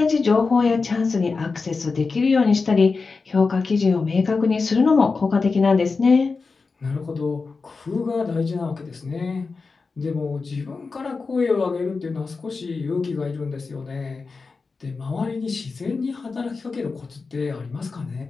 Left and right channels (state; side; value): quieter; right; 4.4 dB